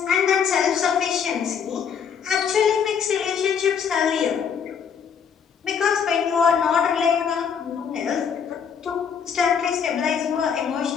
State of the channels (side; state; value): right; quieter; 7.1 dB